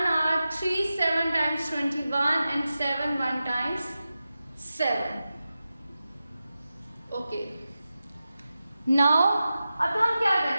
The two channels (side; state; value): both; inverted; correlation -0.93